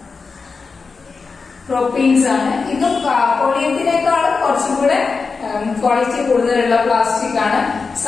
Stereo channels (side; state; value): right; quieter; 4.7 dB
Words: പ്രൊപ്പീൻസ് ആണ്. ഇത് പോളിയെത്തിനേക്കാളും കുറച്ചും കൂടെ ക്വാളിറ്റി കൂടുതലുള്ള പ്ലാസ്റ്റിക് ആണ്.